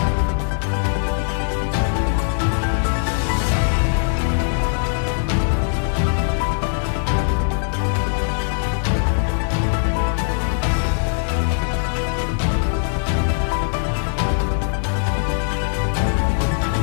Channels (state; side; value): silent; right; digital silence